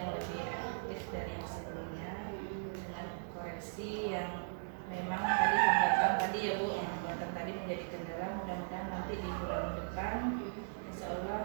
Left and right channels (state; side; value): silent; left; digital silence